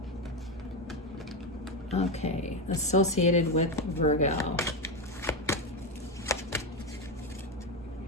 Okay, associated with Virgo.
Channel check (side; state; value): both; normal; correlation 0.11